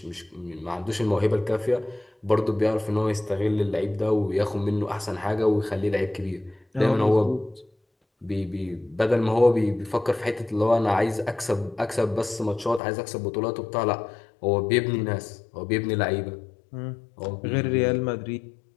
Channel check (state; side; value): drops out; right; at 12.8 s